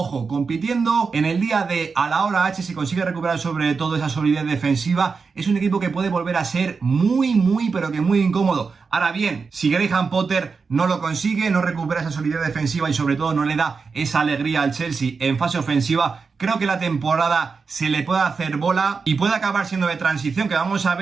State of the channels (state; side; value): quieter; left; 5.0 dB